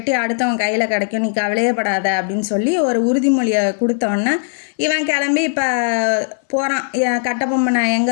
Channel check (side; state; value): right; silent; 61 dB below the other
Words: அடுத்தவன் கையில் கிடைக்கும், நீ கவலையப்படாத அப்படின்னு சொல்லி ஒரு உறுதிமொழியை கொடுத்தோன்னே இவன் கிளம்பி இப்போ போகிறான். கட்டபொம்மனை